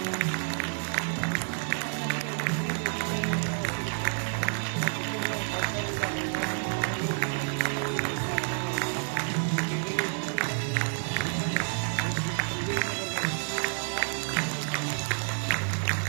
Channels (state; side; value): silent; left; 58 dB below the other